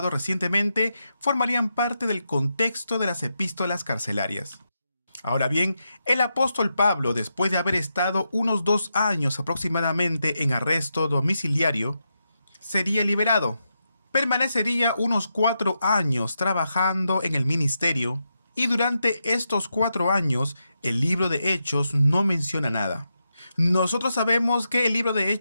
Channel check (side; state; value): both; inverted; correlation -0.86